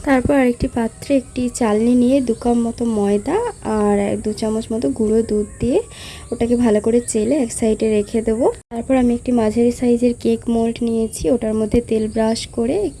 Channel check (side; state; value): both; identical; correlation 1.00